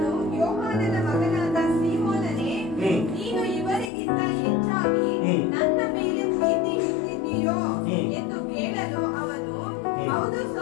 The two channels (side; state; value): right; drops out; at 3.9 s